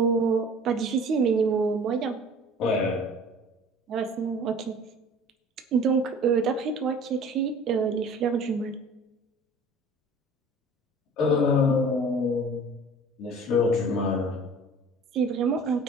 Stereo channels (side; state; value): both; normal; correlation 0.45